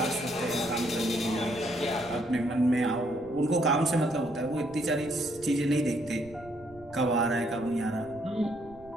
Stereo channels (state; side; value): noise; right; rumble, 23 dB below the sound